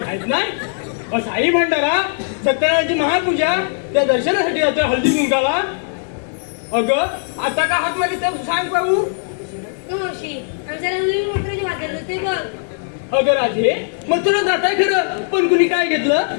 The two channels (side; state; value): right; silent; 55 dB below the other